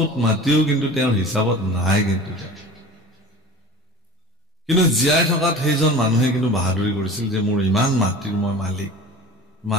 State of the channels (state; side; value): normal; both; correlation 0.39